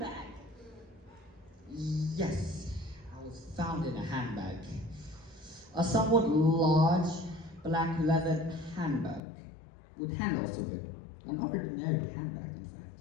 Yes, I was found in a handbag. A somewhat large, black leather handbag with handles to it. An ordinary handbag, in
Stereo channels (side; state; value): right; drops out; at 9.2 s